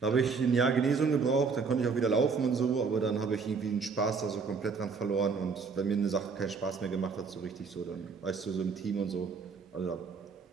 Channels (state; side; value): quieter; left; 5.1 dB